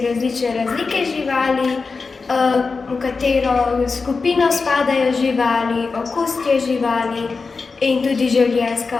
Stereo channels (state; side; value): quieter; right; 4.4 dB